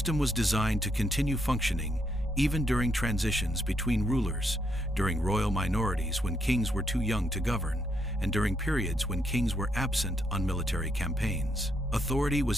was designed to continue functioning even during transitions between rulers, during royal minorities when kings were too young to govern, and during periods when kings were absent on military campaigns. Authority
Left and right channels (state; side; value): normal; both; correlation 0.76